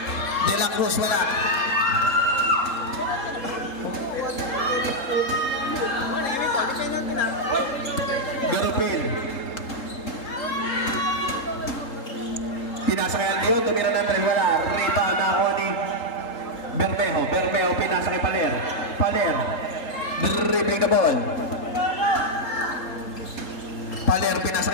De La Cruz, wala. Garupil. Pinasa kay Aldion, tumira ng tres, wala. Rebound na ako ni Bermeo, pinasa kay Paler. Dribbling the ball. Paler, pinasa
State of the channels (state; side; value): late; right; 3.8 ms